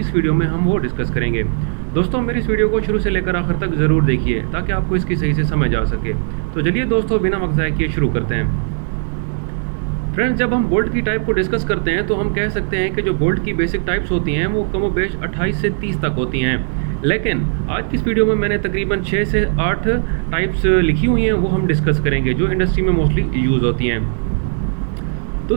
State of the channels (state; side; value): silent; left; digital silence